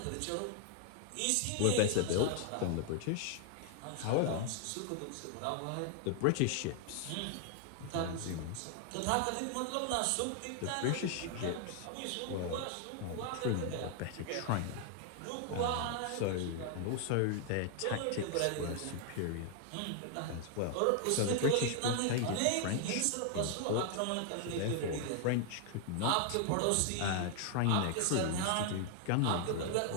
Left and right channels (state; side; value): different; both; correlation 0.00